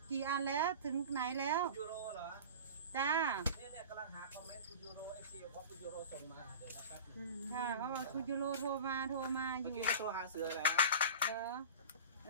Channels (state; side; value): inverted; both; correlation -0.35